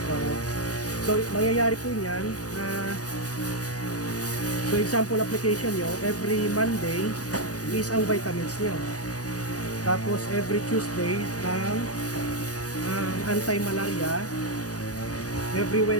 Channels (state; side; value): late; right; 0.67 ms